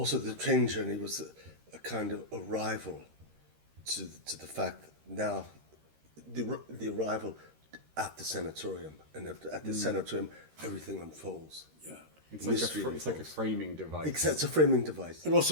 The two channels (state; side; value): late; left; 13 ms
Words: the train journey was a kind of arrival to the fact that now the arrival at the sanatorium, and at the sanatorium everything unfolds. Yeah, it's like a framing device. It's a framing device, and